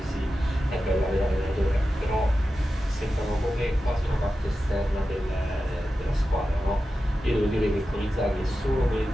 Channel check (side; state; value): both; normal; correlation 0.92